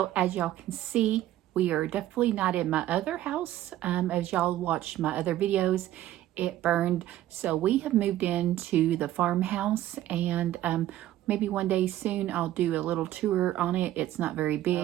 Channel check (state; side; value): quieter; left; 13.7 dB